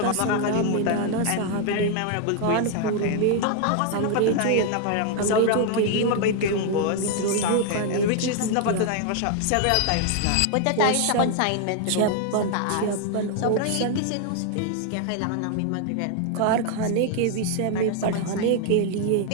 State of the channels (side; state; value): both; different; correlation 0.00